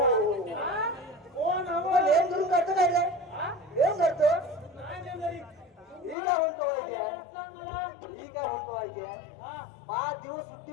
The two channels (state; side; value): drops out; right; at 6.2 s